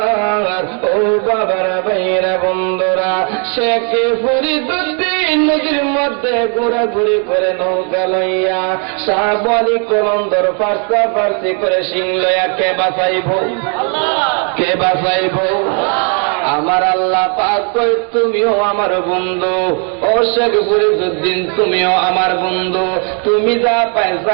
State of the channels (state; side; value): quieter; left; 39.5 dB